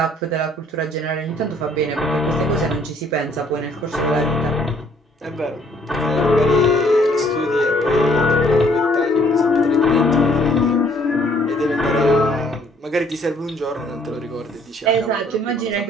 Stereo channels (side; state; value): both; normal; correlation 0.63